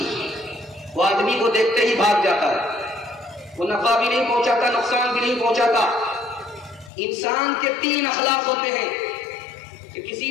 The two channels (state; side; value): drops out; right; at 6.9 s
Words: وہ آدمی کو دیکھتے ہی بھاگ جاتا ہے، وہ نفع بھی نہیں پہنچاتا نقصان بھی نہیں پہنچاتا۔ انسان کے 3 اخلاق ہوتے ہیں کہ کسی